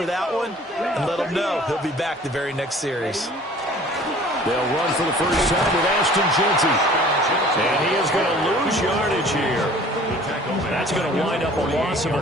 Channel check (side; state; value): both; normal; correlation 0.49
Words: that one and let him know he'll be back the very next series. They'll run for the first time with Ashton Jeanty. And he is going to lose yardage here. That's going to wind up a loss of a